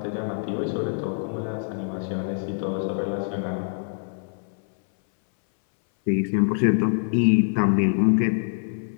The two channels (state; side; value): silent; right; 60 dB below the other